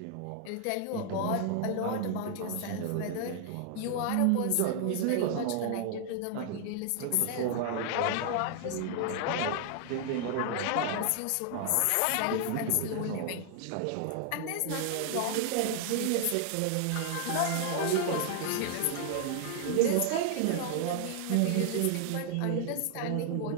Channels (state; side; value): different; both; correlation 0.00